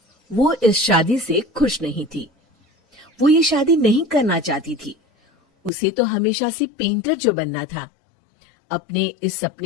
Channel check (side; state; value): right; drops out; at 5.7 s